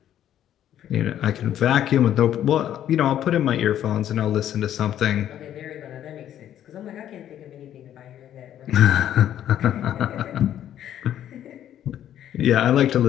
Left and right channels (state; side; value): quieter; right; 11.0 dB